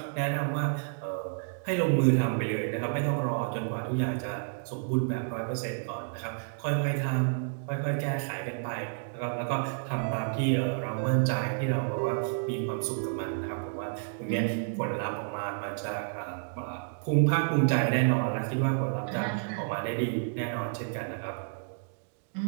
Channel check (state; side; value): silent; left; digital silence